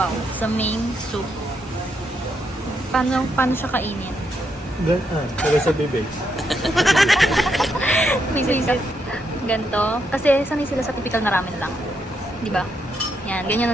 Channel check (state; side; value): normal; both; correlation 0.79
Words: sa main soup. Paano siya kainin? Pero sa bibig. Ganto. Kasi sanay sila sa typical na ramen lang. Di ba? Yan, ganyan